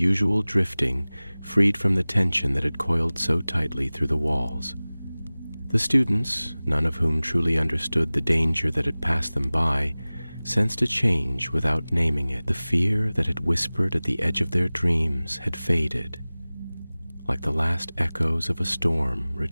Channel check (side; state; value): both; inverted; correlation -0.99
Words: drifting, freed from the tension that had coiled so tightly through the walls. The students, none of whom truly understood the danger that had passed them by, sensed a change without naming it. The fear that had whispered at the edge of their dreams had faded, like the last echoes of a storm